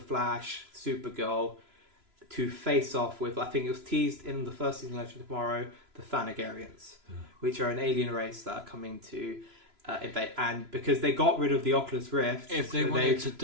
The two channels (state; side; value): late; left; 3.0 ms